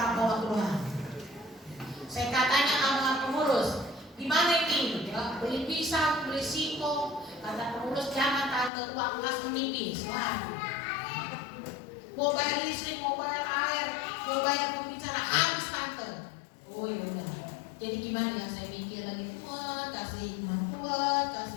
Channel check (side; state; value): right; drops out; at 8.7 s